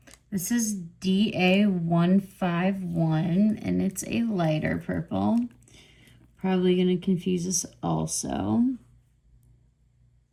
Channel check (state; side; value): identical; both; correlation 1.00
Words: This is DA151, and it's a lighter purple. Probably going to confuse us also.